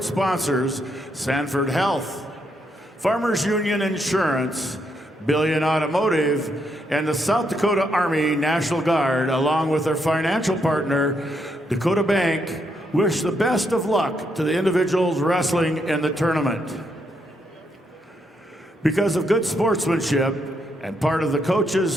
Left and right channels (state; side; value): normal; both; correlation 0.78